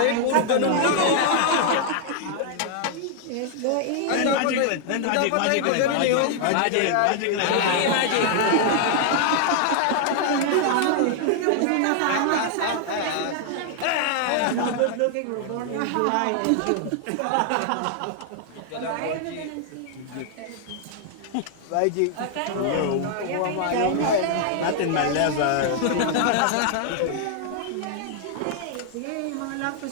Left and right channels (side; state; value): both; different; correlation 0.00